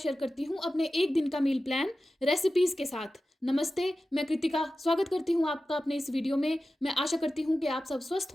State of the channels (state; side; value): normal; both; correlation 0.94